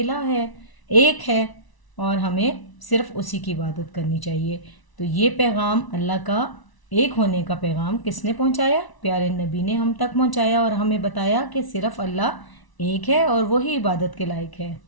है, एक है और हमें सिर्फ उसी की इबादत करनी चाहिए। तो ये पैगाम अल्लाह का एक होने का पैगाम किसने पहुंचाया? प्यारे नबी ने हम तक पहुंचाया और हमें बताया कि सिर्फ अल्लाह एक है और वही इबादत के लायक है।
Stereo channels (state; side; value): late; right; 1.0 ms